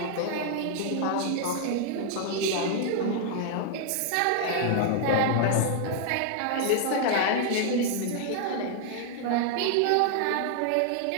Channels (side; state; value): both; different; correlation 0.00